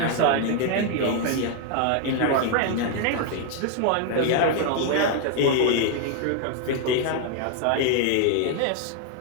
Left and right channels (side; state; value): both; different; correlation 0.00